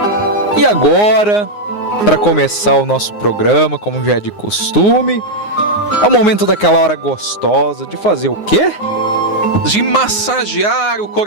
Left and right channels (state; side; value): late; right; 9.6 ms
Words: E agora, para começar o nosso programa, como já é de costume, é o momento daquela hora gostosa de fazer o quê? De massagear o